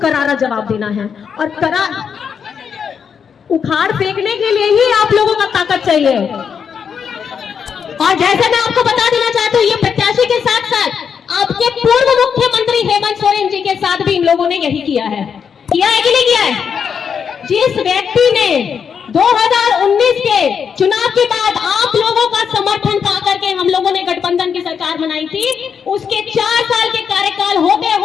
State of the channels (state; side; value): quieter; right; 6.9 dB